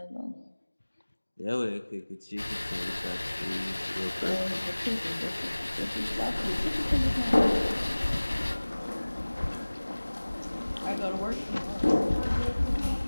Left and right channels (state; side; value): inverted; both; correlation -1.00